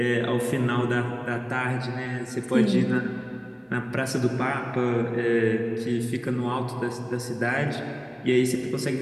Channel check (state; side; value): identical; both; correlation 1.00